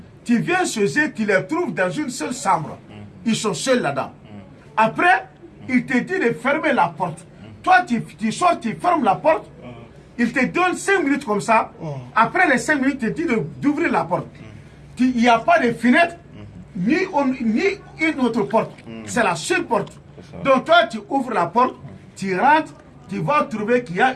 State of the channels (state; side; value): identical; both; correlation 1.00